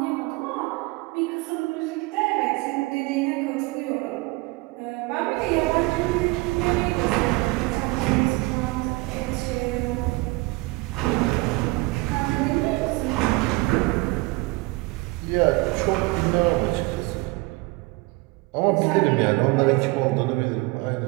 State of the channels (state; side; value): quieter; left; 23.9 dB